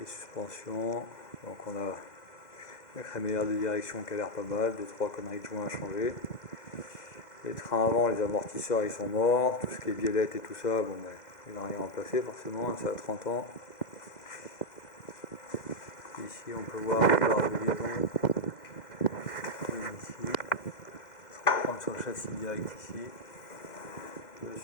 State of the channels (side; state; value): right; late; 2.0 ms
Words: suspensions. Donc on a la crémaillère de direction qui a l'air pas mal, 2-3 conneries de joints à changer. Les trains avant, les amortisseurs ils sont morts, tout ce qui est biellette et tout ça, bon ben, il n'a rien remplacé forcément, ça a 30 ans. Ici on peut voir les barres de liaison. Ici, on va reprendre sur le châssis direct ici. Le